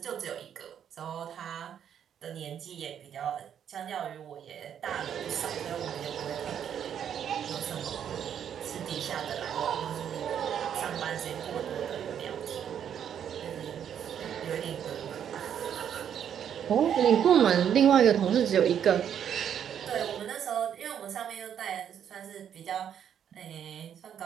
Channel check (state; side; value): quieter; left; 8.9 dB